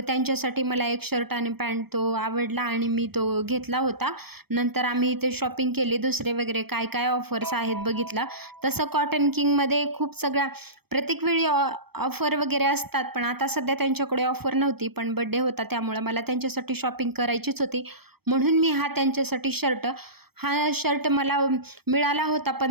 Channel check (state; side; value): late; left; 0.96 ms